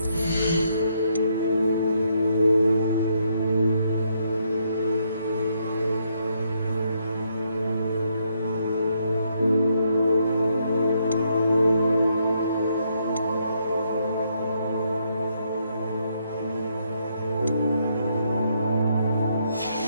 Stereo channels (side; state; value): both; inverted; correlation -0.75